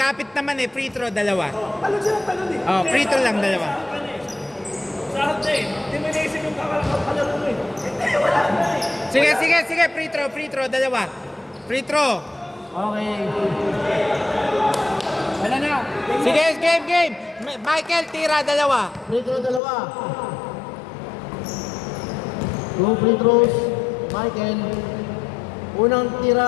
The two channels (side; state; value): right; drops out; at 19.6 s